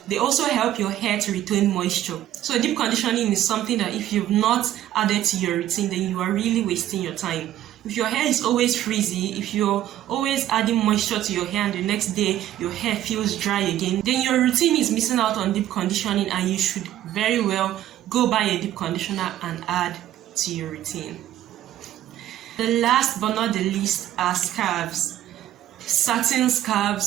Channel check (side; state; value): left; quieter; 12.8 dB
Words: They also help your hair to retain moisture. So deep conditioning is something that if you've not added to your routine, then you are really wasting your time. If your hair is always frizzy, if you're always adding moisture to your hair and the next day your hair feels dry again, then your routine is missing out on deep conditioning, and you should very well go buy a deep conditioner and add to your routine. The last but not the least are scarves. Satin